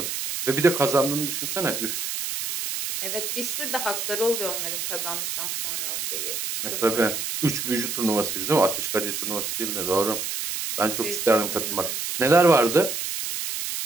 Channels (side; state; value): right; noise; hiss, 3 dB below the sound